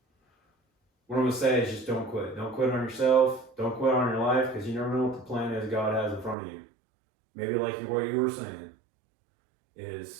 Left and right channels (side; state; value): left; drops out; at 6.4 s